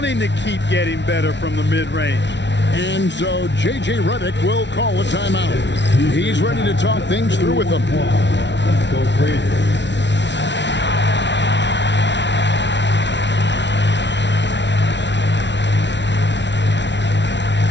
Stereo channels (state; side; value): late; right; 0.51 ms